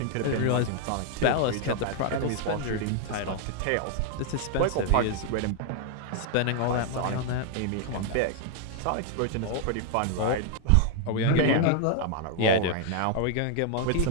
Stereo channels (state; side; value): different; both; correlation 0.00